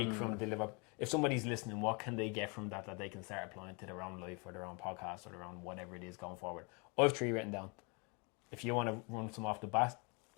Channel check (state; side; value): quieter; right; 32.0 dB